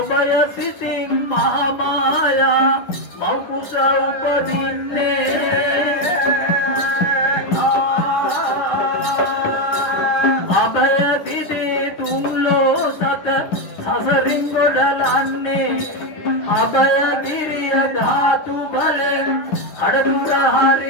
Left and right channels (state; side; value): late; right; 9.8 ms